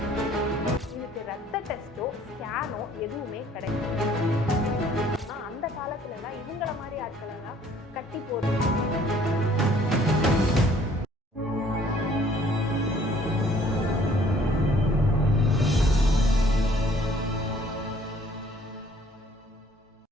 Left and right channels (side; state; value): both; normal; correlation 0.58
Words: இதுக்கு ரத்த டெஸ்டோ ஸ்கேனோ எதுவுமே கிடையாது. அந்த காலத்துல எல்லாம் இவங்கள மாதிரி ஆட்கள் எல்லாம் கட்டி போடுறது.